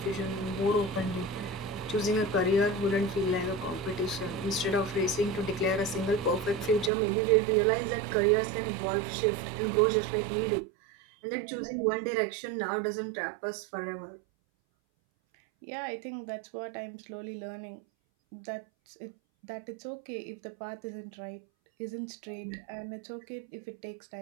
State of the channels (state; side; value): drops out; left; at 6.9 s